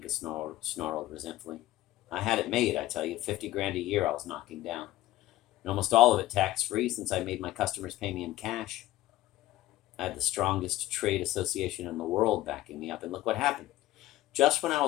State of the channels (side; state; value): right; quieter; 15.9 dB